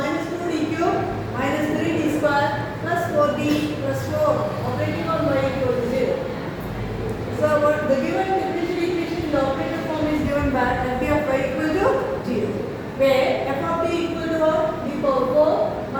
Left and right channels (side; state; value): both; identical; correlation 1.00